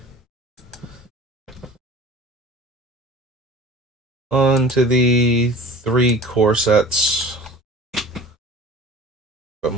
On to the 3 core sets of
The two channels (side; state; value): both; normal; correlation 0.42